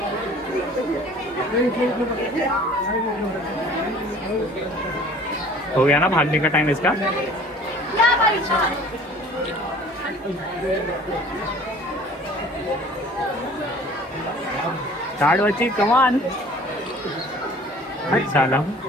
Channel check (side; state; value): both; normal; correlation 0.48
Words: हो गया ना भागने का टाइम इसका? स्टार्ट बच्ची, कम ऑन। चलो